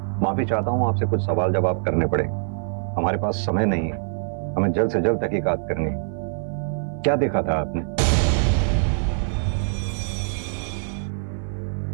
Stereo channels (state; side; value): silent; left; 57 dB below the other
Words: माफी चाहता हूं, आपसे कुछ सवाल जवाब करने पड़ेंगे। हमारे पास समय नहीं है, हमें जल्द से जल्द तहकीकात करनी है। क्या देखा था आपने?